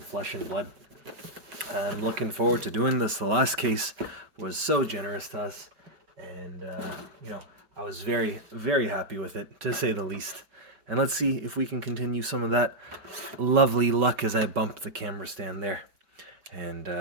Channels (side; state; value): left; late; 5.1 ms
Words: and Blood. I'm looking forward to doing this. The last case was so generous to us, and I was very, very happy with it, to say the least. And let's see if we can continue some of that lovely luck as I bump the camera stand there. And